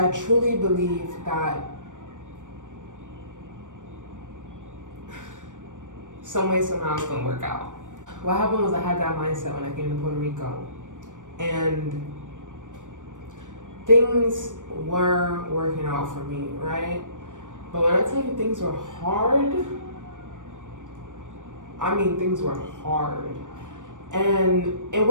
truly believe that some way, somehow it's gonna work out. What happened was I had that mindset when I came to Puerto Rico, and things were working out for me, right? But when I tell you things were hard, I mean things were hard. And it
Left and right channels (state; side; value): late; left; 0.87 ms